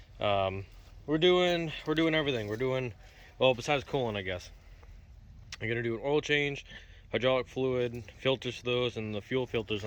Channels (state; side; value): identical; both; correlation 1.00